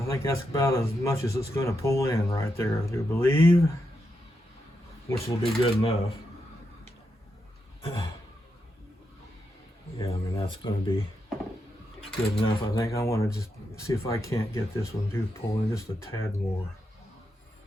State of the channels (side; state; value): both; normal; correlation 0.84